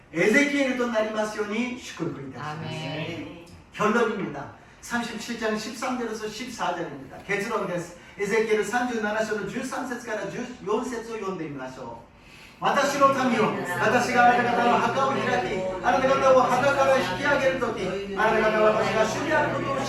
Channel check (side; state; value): both; identical; correlation 1.00